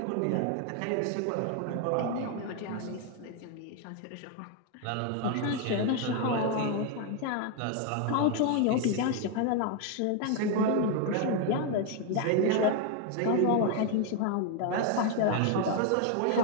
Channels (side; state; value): both; different; correlation 0.01